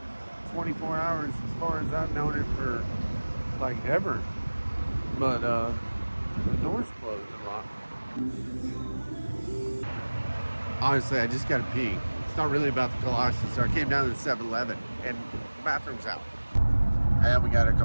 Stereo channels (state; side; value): inverted; both; correlation -1.00